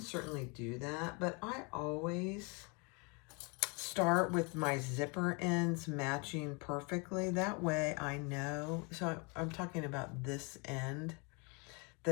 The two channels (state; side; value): quieter; right; 31.7 dB